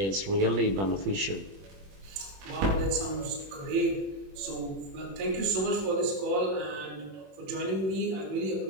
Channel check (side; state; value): left; late; 21 ms